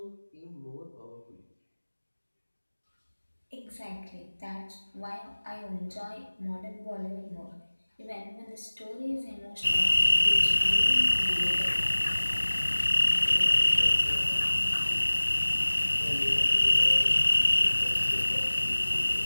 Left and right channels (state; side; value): inverted; both; correlation -1.00